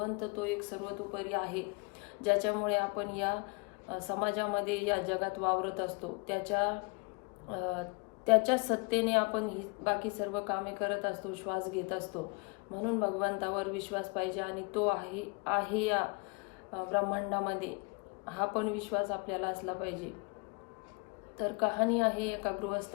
तो एक सर्वतोपरी आहे, ज्याच्यामुळे आपण या समाजामध्ये या जगात वावरत असतो. त्याच्या सत्तेने आपण ही बाकी सर्व कामे करत असतो, श्वास घेत असतो. म्हणून भगवंतावर विश्वास पाहिजे आणि तो आहे या ब्रह्मांडामध्ये, हा पण विश्वास आपल्याला असला पाहिजे. तर कहाणी आहे एका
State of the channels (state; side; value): quieter; right; 31.0 dB